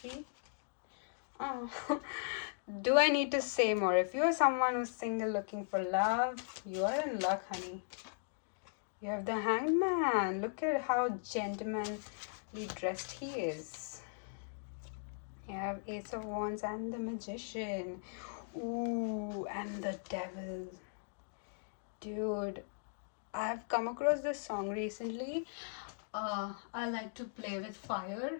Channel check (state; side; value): silent; right; digital silence